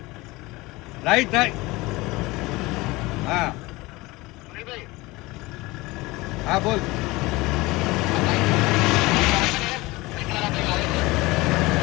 राइट हाँ हाँ बोल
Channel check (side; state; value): right; quieter; 21.6 dB